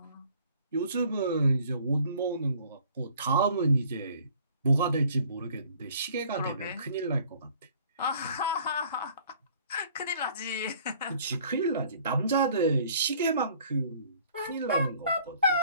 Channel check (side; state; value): both; inverted; correlation -0.56